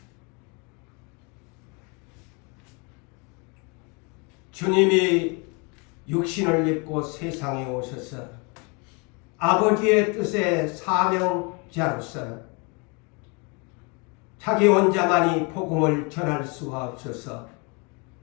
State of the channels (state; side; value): quieter; right; 31.8 dB